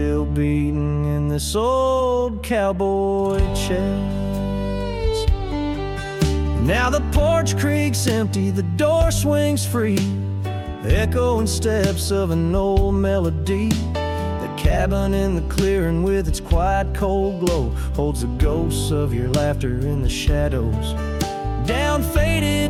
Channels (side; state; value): both; identical; correlation 1.00